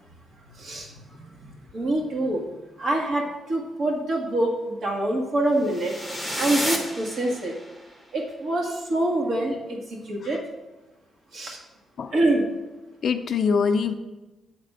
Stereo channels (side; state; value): both; normal; correlation 0.82